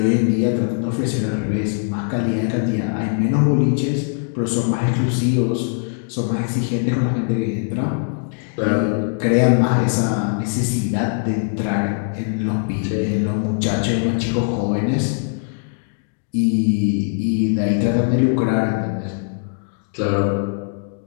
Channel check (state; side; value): silent; right; digital silence